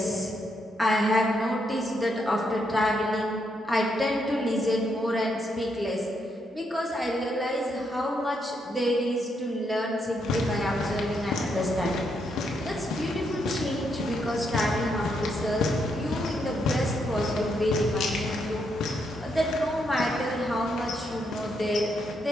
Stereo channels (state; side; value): normal; both; correlation 0.78